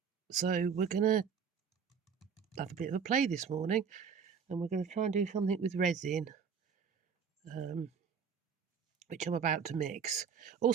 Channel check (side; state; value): left; quieter; 6.6 dB